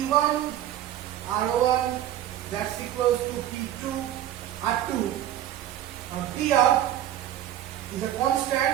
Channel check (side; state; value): left; quieter; 12.0 dB